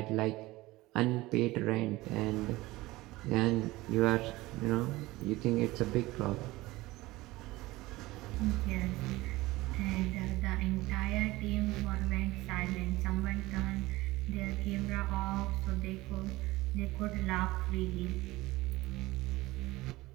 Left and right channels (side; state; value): left; quieter; 19.3 dB